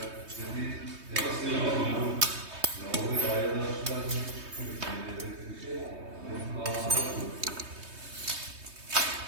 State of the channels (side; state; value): left; late; 3.2 ms